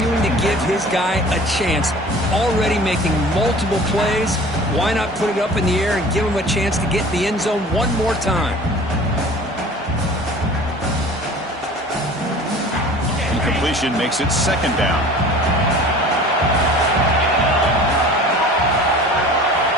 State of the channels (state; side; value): normal; both; correlation 0.43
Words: to give his guy a chance. Already making multiple plays. Why not put it up in the air and give him a chance to get in the end zone one more time? Incompletion makes it second down.